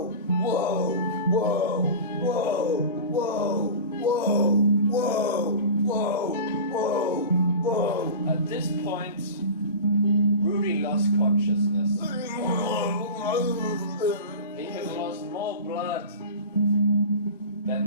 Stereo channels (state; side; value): inverted; both; correlation -0.33